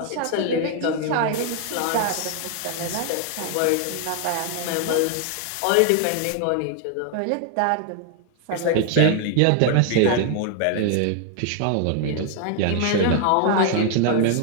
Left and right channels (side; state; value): both; different; correlation 0.00